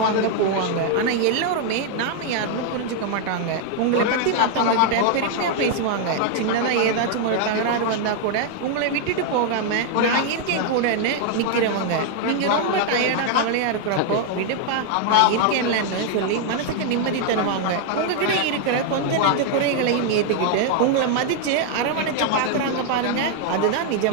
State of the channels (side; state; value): both; different; correlation 0.00